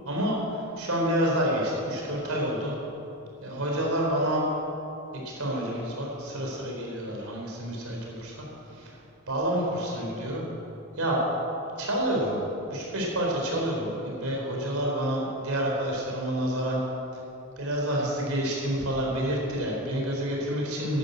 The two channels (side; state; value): both; normal; correlation 0.17